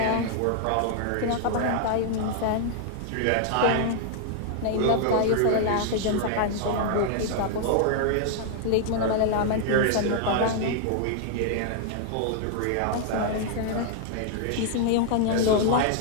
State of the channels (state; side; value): different; both; correlation 0.00